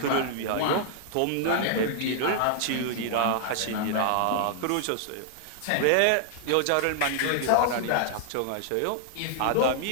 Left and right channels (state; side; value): different; both; correlation -0.01